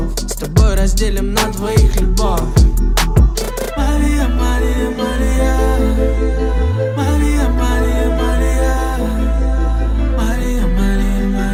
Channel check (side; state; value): both; identical; correlation 1.00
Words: С тобой разделим на двоих любовь. Мария, Мария, Мария, Мария, Мария, Мария, Мария, Мария,